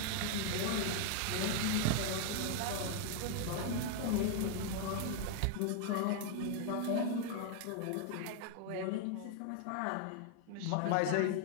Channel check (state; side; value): different; both; correlation 0.00